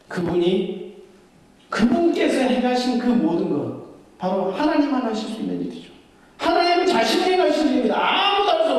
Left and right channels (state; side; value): identical; both; correlation 1.00